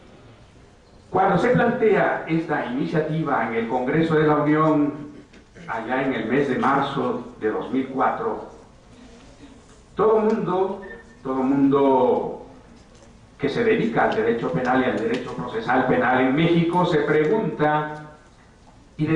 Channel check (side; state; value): both; identical; correlation 1.00